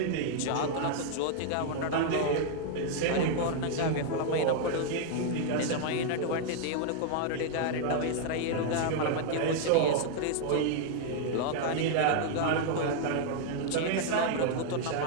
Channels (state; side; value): different; both; correlation 0.00